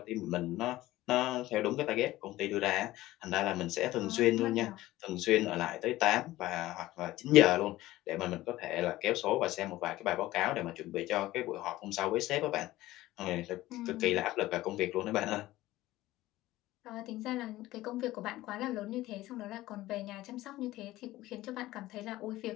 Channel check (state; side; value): quieter; right; 16.7 dB